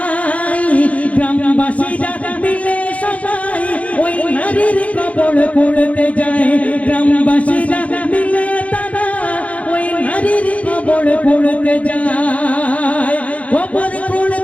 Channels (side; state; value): right; late; 0.066 ms